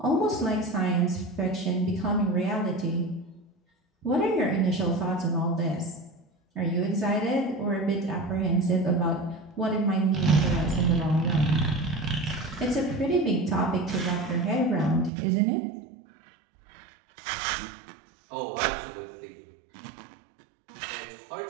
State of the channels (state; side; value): drops out; left; at 15.1 s